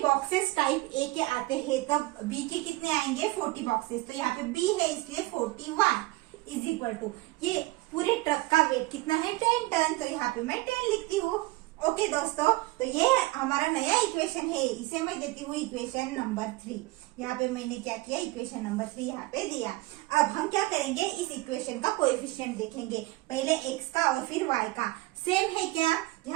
बॉक्सेस टाइप ए के आते हैं, तब बी के कितने आएंगे? 40 बॉक्सेस। तो यहाँ पे बी है इसलिए 41 इज इक्वल टू, ये पूरे ट्रक का वेट कितना है? 10 टन। तो यहाँ पे मैं 10 लिखती हूँ। ओके दोस्तों, तो ये हमारा नया इक्वेशन है, इसे मैं देती हूँ इक्वेशन नंबर 3। यहाँ पे मैंने क्या किया? इक्वेशन नंबर 3 यहाँ पे दिया। अब हम क्या करेंगे? इस इक्वेशन का कोएफिशिएंट देखेंगे, पहले x का और फिर y का। सेम है क्या?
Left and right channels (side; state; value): left; quieter; 20.4 dB